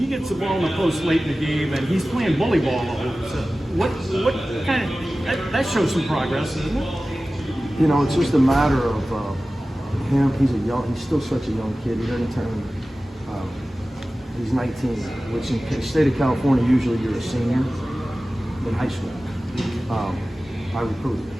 gets the ball in the post late in the game and he's playing bully ball all over a sudden, what kind of that shows some progress, doesn't it? You know, it's just a matter of him. He's still such a young kid. He doesn't turn. He's 19, which in the state of California, usually you're a senior in high school. I recruited him,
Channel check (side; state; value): both; normal; correlation 0.96